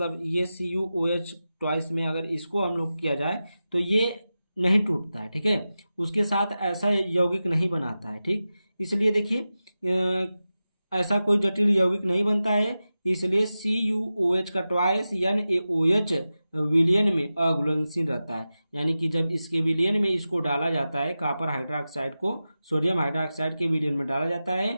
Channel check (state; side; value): inverted; both; correlation -0.93